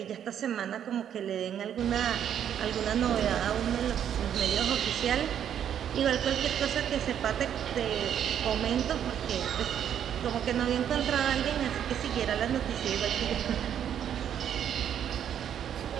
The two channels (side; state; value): left; quieter; 9.4 dB